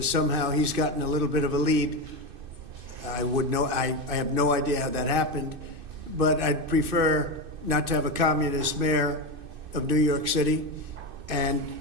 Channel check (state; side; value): late; left; 2.6 ms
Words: somehow he's gotten a little bit of a lead. I have no idea how that happened, but I'd prefer not to have a communist mayor of New York City. And,